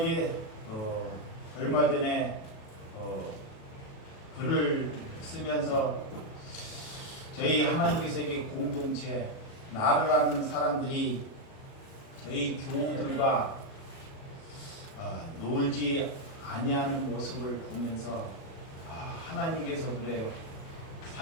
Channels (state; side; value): late; right; 37 ms